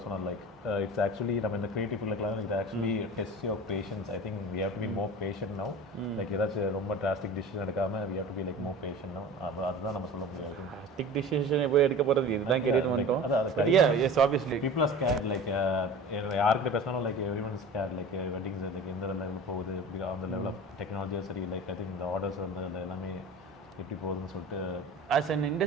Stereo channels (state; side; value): normal; both; correlation 0.36